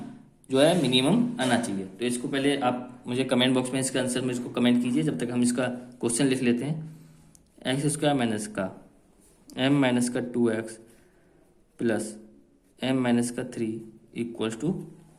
जो है मिनिमम आना चाहिए। तो इसको पहले आप मुझे कमेंट बॉक्स में इसका आंसर में इसको कमेंट कीजिए, जब तक हम इसका क्वेश्चन लिख लेते हैं। एक्स स्क्वायर माइनस का m माइनस का 2x प्लस m माइनस का 3 इक्वल्स टू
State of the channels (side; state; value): both; identical; correlation 1.00